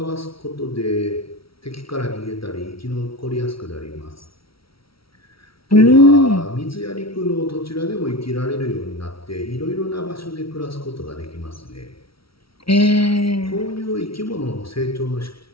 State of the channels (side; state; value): right; late; 0.75 ms